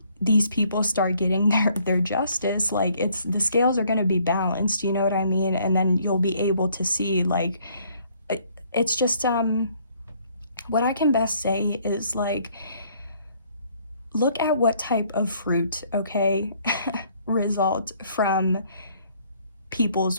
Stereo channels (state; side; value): inverted; both; correlation -0.64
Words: these people start getting their justice, like, the scales are going to be balanced, you know what I mean? And then you'll be able to see, like, it's just what I can best say is, like, look at what type of fruit, okay, result from